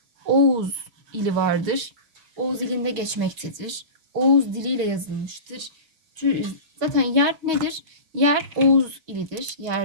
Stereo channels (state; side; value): late; left; 6.3 ms